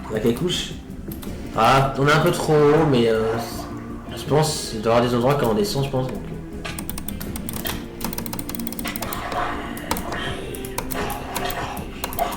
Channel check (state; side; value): identical; both; correlation 1.00